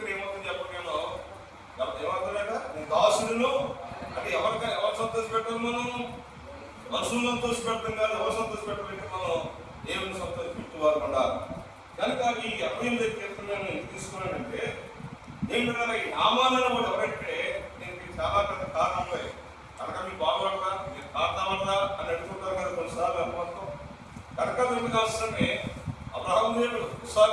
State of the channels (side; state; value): both; identical; correlation 1.00